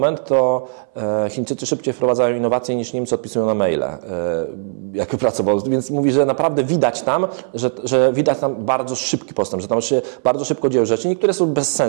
to Chińczycy szybciej wprowadzają innowacje niż Niemcy odpisują na maile, jak pracował. Więc mówi, że naprawdę widać tam, że widać tam bardzo szybki postęp, że tam się bardzo szybko dzieją rzeczy. Niektóre są bez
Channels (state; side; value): silent; left; 62 dB below the other